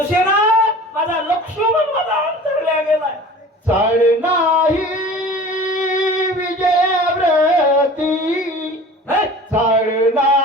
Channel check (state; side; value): normal; both; correlation 0.41